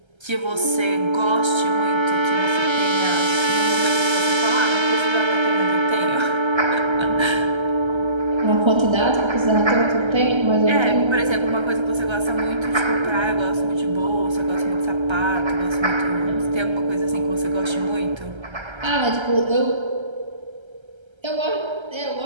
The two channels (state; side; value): late; left; 1.3 ms